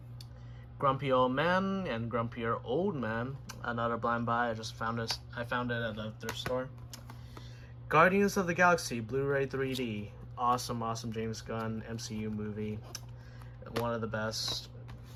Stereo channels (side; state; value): both; identical; correlation 1.00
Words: Grumpy Old Man and Grumpier Old Man. Another blind buy. I just found this. I found it at the thrift store. Guardians of the Galaxy Blu-ray 3D. Awesome James Gunn MCU movie. One of the best.